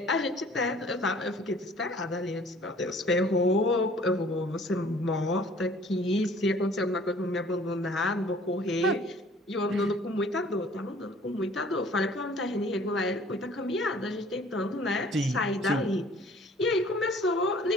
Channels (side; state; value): both; normal; correlation 0.53